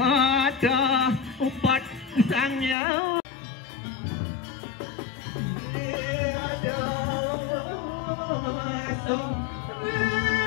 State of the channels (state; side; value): drops out; right; at 2.8 s